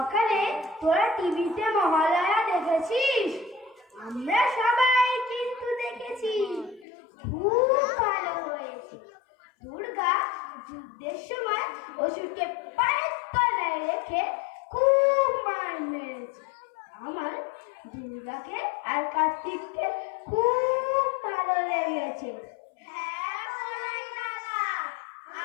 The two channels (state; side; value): drops out; right; at 6.9 s